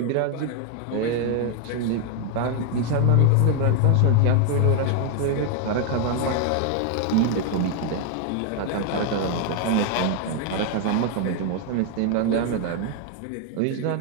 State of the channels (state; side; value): different; both; correlation 0.00